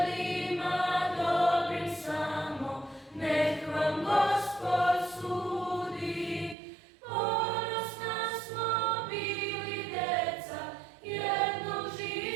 dobrim samo, nek vam Gospod sudi. Ponosna smo bili deca jednog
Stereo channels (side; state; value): left; drops out; at 6.6 s